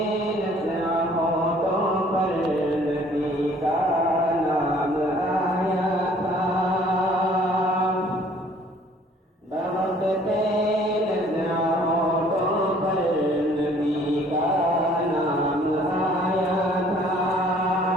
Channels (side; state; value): both; normal; correlation 0.56